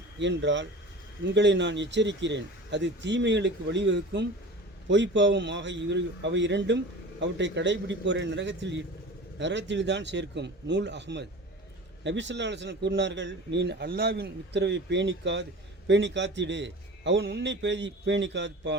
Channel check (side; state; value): both; normal; correlation 0.37